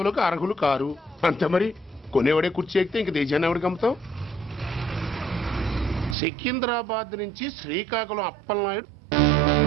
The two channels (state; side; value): drops out; left; at 6.2 s